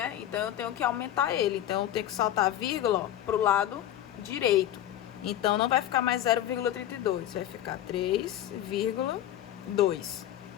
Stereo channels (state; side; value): quieter; right; 12.2 dB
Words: Então, eu tenho que aumentar ele. Então, eu tenho que saltar a vírgula para o lado direito. Então, não vai ficar mais 0,32. Vai ficar 3,2.